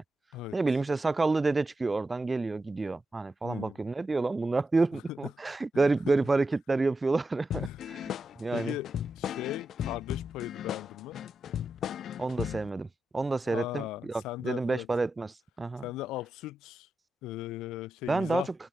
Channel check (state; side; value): normal; both; correlation 0.88